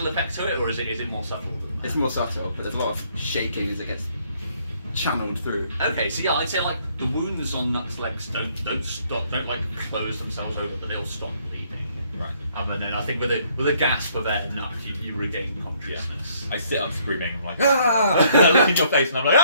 effect to it, or is it more subtle than that? It's more subtle, but there's a lot of shaking as it gets channeled through. Okay. So yeah, I'd say like the wounds on Nuck's legs don't like close themselves over, but they'll stop bleeding. Right. And then I think with a gasp of air, Nuck, you regain consciousness. I sit up screaming. I'm like, ah! I look in your face and I'm like,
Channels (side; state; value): both; inverted; correlation -0.66